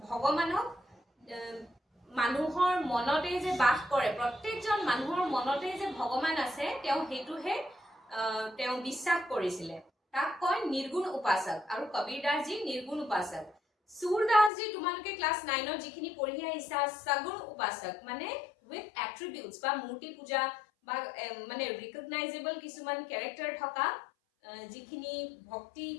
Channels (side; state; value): right; drops out; at 14.5 s